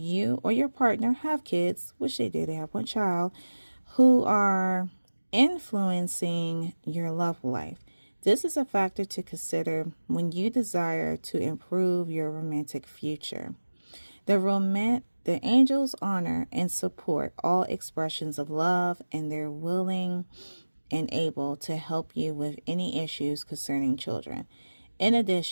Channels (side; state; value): both; inverted; correlation -1.00